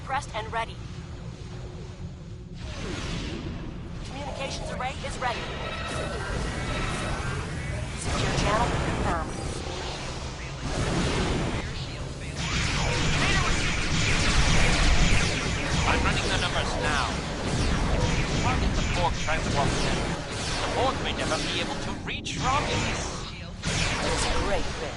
and ready. Communications array is ready. Secure channel confirmed. I'm running the numbers now. Target the Borg transport center. The Borg may never be able to reach Romulus. It's a great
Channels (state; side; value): identical; both; correlation 1.00